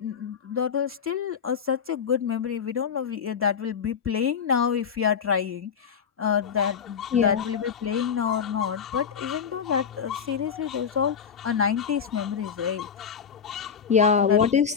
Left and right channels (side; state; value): right; quieter; 7.0 dB